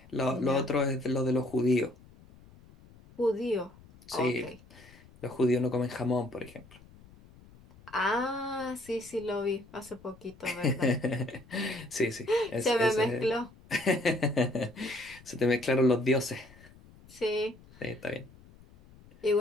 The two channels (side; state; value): left; noise; rumble, 24 dB below the sound